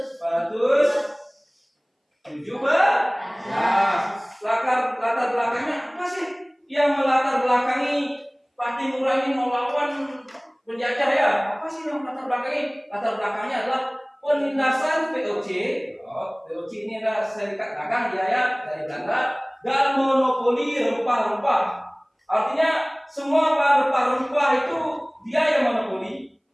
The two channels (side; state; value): both; identical; correlation 1.00